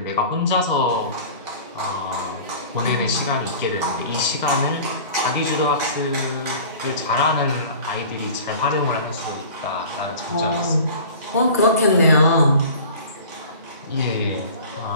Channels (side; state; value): both; inverted; correlation -0.42